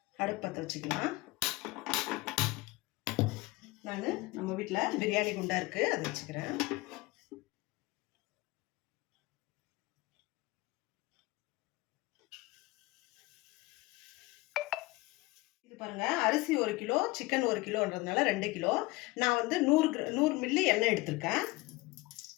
அடுப்பு பற்ற வச்சுக்கலாம். நான் நம்ம வீட்டில் பிரியாணி குண்டா இருக்குது, அதை வச்சுக்கிறேன். இது பாருங்க, அரிசி 1 கிலோ, சிக்கன் 1 கிலோன்றதுனால 2 கிலோ. நான் வந்து 100 மில்லி எண்ணெய் எடுத்திருக்கேன்.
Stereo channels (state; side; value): quieter; right; 21.7 dB